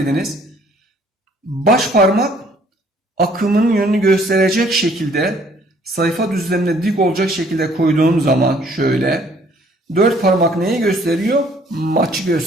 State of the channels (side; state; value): both; normal; correlation 0.60